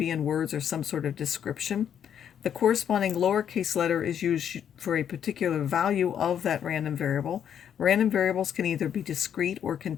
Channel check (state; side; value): quieter; right; 8.9 dB